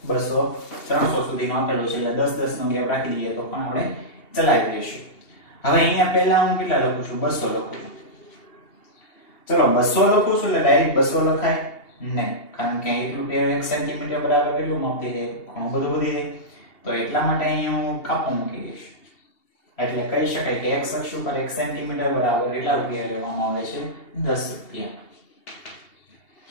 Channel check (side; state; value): right; late; 2.7 ms